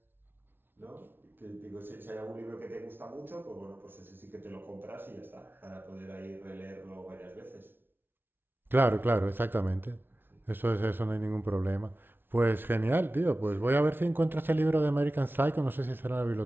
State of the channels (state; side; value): late; left; 0.10 ms